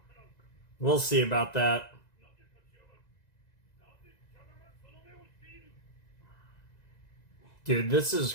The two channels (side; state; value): right; late; 1.9 ms